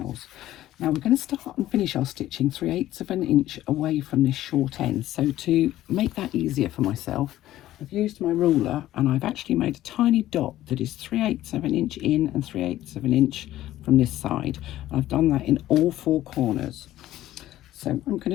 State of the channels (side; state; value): right; quieter; 14.2 dB